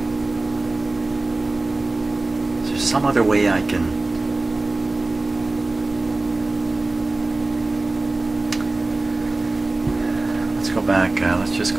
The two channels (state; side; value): quieter; left; 3.1 dB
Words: Is there some other way I can... Let's go back. Let's just